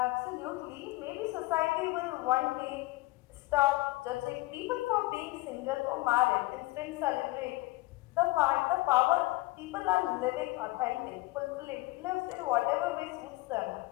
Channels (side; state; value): right; quieter; 20.6 dB